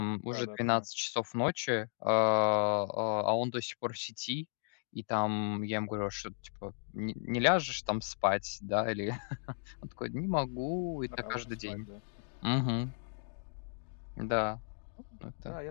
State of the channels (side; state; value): right; silent; digital silence